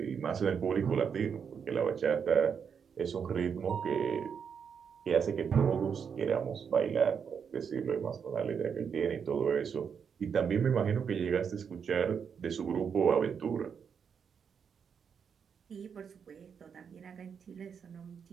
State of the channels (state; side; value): quieter; left; 6.9 dB